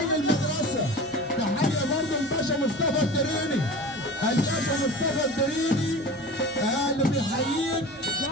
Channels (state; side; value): normal; both; correlation 0.35